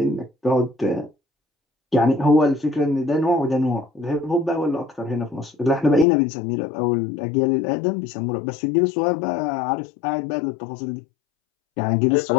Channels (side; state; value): right; drops out; at 6.1 s